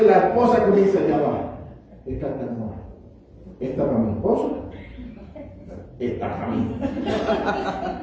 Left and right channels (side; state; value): both; identical; correlation 1.00